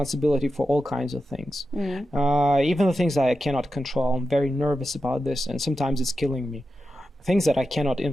for all kinds of things. Even the things that I cannot control. I'm very nervous about this, and sometimes it's killing me. Things that I cannot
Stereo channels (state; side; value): normal; both; correlation 0.90